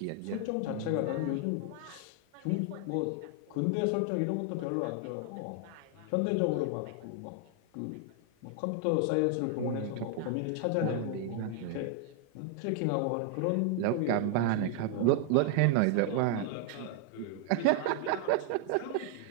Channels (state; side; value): different; both; correlation 0.00